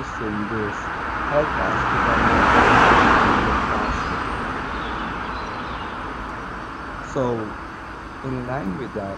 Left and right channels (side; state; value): both; identical; correlation 1.00